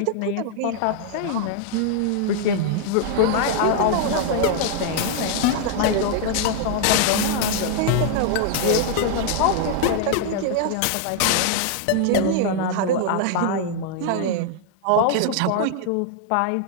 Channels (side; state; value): both; different; correlation 0.00